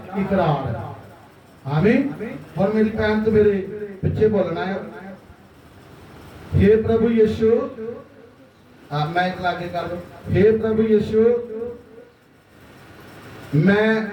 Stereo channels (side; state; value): both; identical; correlation 1.00